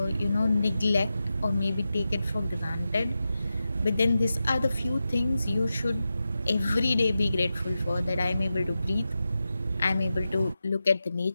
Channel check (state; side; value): inverted; both; correlation -0.91